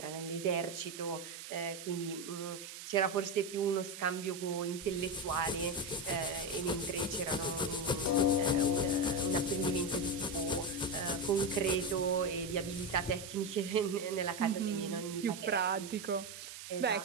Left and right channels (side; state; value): right; noise; hiss, 11 dB below the sound